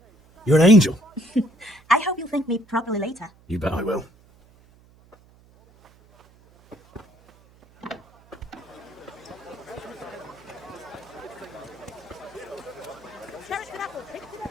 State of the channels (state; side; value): noise; right; hum, 28 dB below the sound